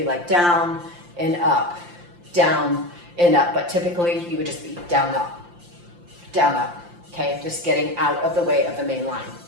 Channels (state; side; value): late; left; 5.8 ms